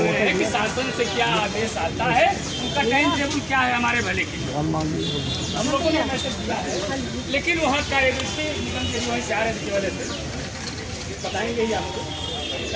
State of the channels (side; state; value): both; identical; correlation 1.00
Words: हैं कि शासन से क्या आदेश आता है, उनका टाइम टेबल क्या है हमारे भले के लिए। हम लोगों ने मैसेज दिया है, लेकिन वहाँ कार्यनीति निगम के वहीं से आ रहे थे वाले से बताएंगे ही आपको,